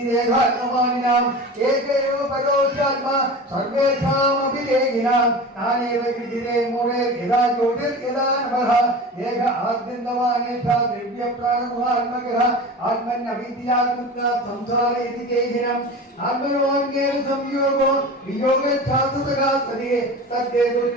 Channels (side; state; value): both; normal; correlation 0.33